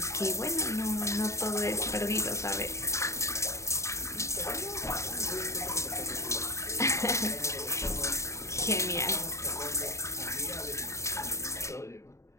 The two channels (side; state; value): right; late; 0.14 ms